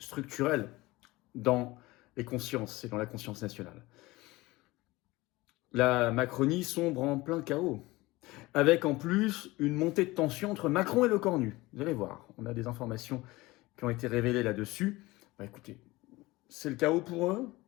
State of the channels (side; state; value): right; quieter; 20.5 dB